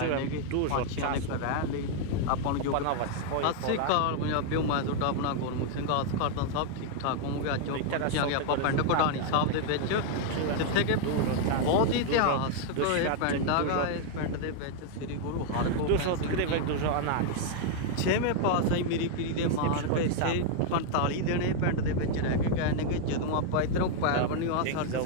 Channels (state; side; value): different; both; correlation 0.00